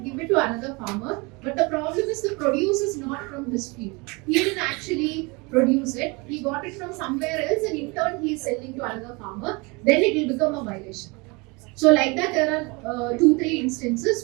it to another farmer, but the problem is the produce is not from his field. He didn't actually produce it, he got it from somewhere else and in turn he is selling to another farmer, then it will become a violation. So like that there are 2-3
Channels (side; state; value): left; quieter; 27.6 dB